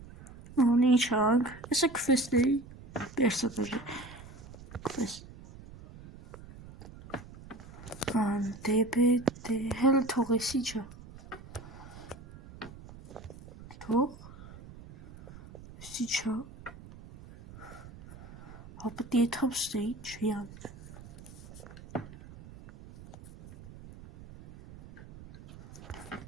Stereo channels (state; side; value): noise; right; rumble, 17 dB below the sound